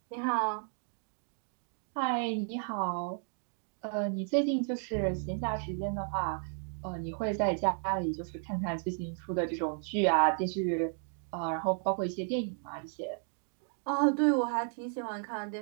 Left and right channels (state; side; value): silent; left; 55 dB below the other